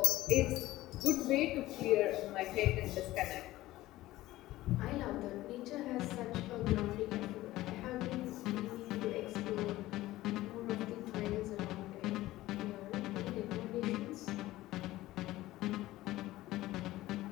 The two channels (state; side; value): quieter; right; 16.7 dB